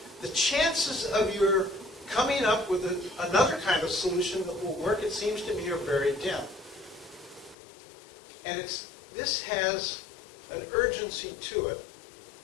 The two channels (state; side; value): drops out; right; at 7.6 s